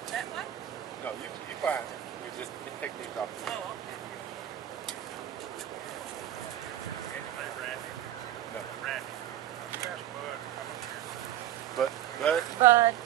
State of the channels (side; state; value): left; quieter; 12.2 dB